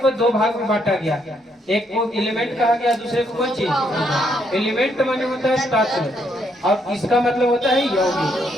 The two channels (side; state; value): both; normal; correlation 0.73